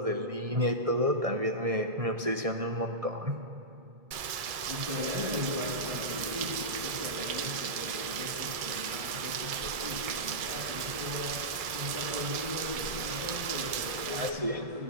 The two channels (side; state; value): left; late; 1.7 ms